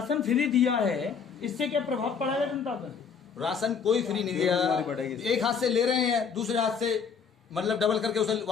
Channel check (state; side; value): quieter; right; 6.3 dB